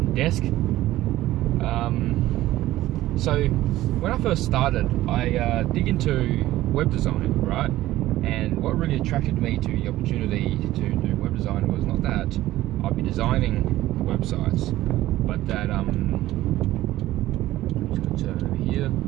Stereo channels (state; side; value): quieter; left; 15.5 dB